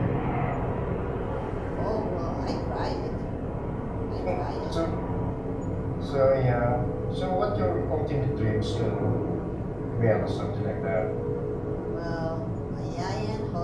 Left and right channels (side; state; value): both; identical; correlation 1.00